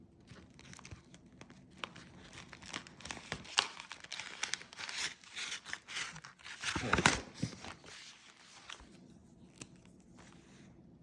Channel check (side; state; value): both; identical; correlation 1.00